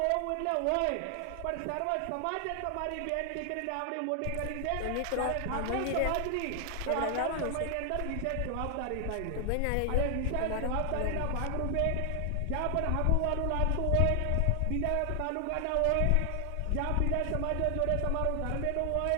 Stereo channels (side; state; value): both; different; correlation 0.00